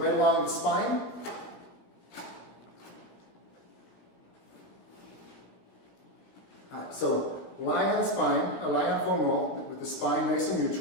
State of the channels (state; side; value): late; right; 17 ms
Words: along the spine. Alright, so lying on the spine, lying on foam roll with the spine nice and